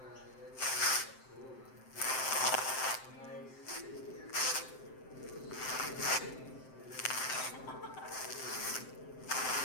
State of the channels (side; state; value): right; late; 7.7 ms